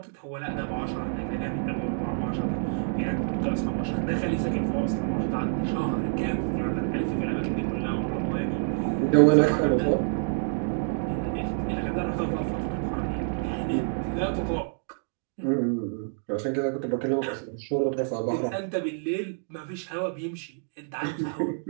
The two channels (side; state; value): left; silent; digital silence